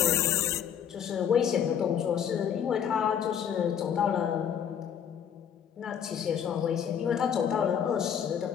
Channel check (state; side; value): quieter; right; 8.4 dB